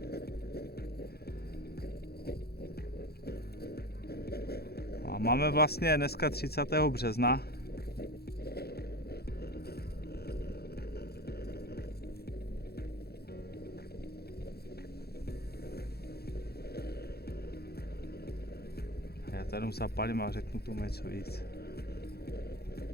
A máme vlastně dneska 30. března. Já tady zapálím a řeknu tomu něco víc.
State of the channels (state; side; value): late; right; 0.46 ms